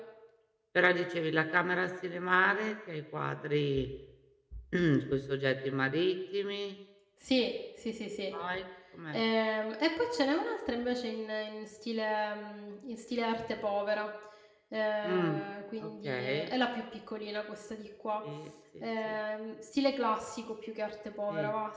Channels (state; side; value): identical; both; correlation 1.00